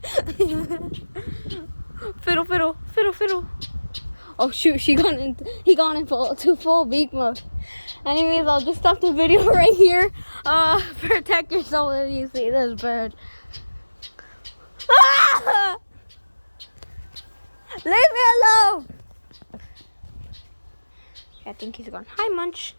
Fiddle, fiddle, fiddle, fiddle. Oh shoot, he got in full beak mode. Anyways, I'll just stop the video right here. Protect yourself if you see this bird. Ah! Leave me alone. I think he's gone. Hi, Munch.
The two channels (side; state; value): both; inverted; correlation -1.00